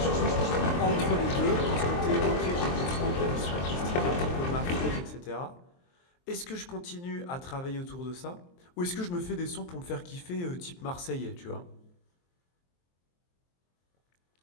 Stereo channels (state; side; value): late; right; 23 ms